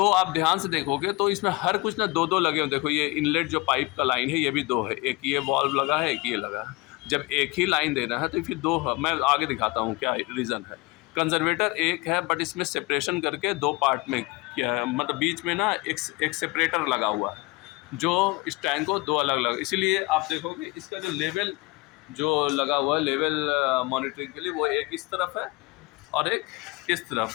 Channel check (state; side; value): quieter; right; 23.3 dB